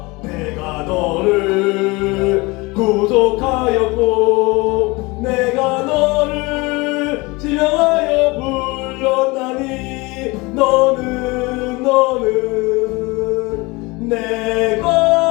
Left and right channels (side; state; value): right; quieter; 24.4 dB